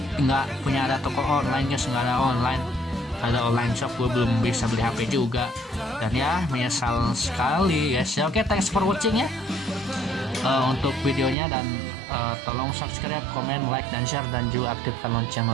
punya ada toko online guys, nggak ada online. Ada online shop, gue belum bisa beli HP juga. Dan ya, menyesal sekali guys ya. Oke, thanks for watching ya untuk videonya. Dan tolong subscribe, komen, like, dan share. Dan juga aktifkan lonceng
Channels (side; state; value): left; drops out; at 11.4 s